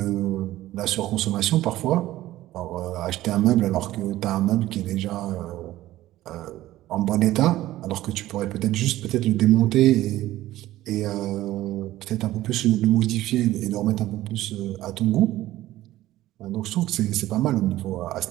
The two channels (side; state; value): left; quieter; 15.3 dB